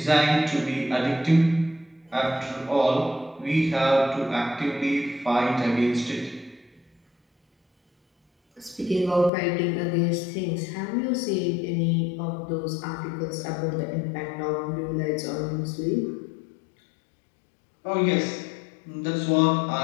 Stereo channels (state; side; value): drops out; right; at 9.3 s